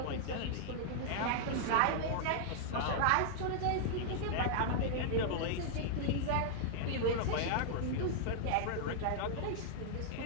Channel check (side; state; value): both; different; correlation -0.01